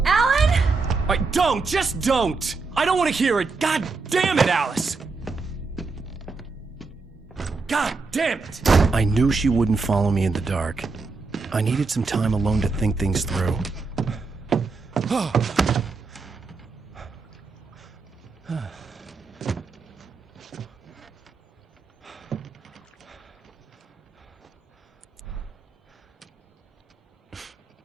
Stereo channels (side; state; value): left; quieter; 4.2 dB